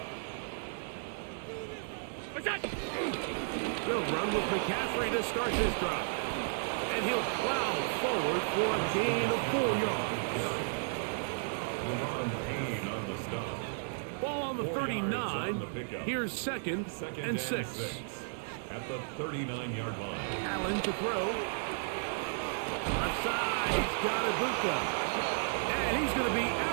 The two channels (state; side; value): silent; left; digital silence